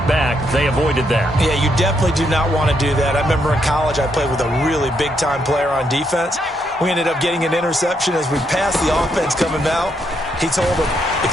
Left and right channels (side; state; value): both; normal; correlation 0.77